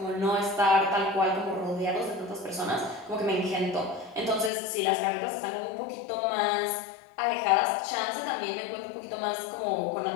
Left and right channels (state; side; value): drops out; right; at 4.5 s